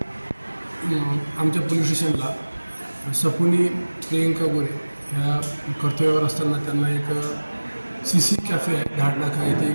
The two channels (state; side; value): inverted; both; correlation -1.00